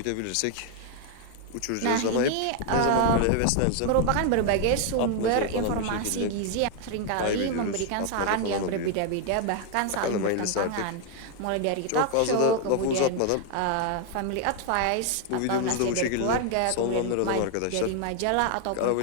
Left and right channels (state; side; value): different; both; correlation 0.00